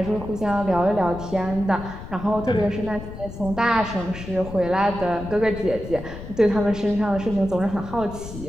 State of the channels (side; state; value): left; noise; rumble, 11 dB below the sound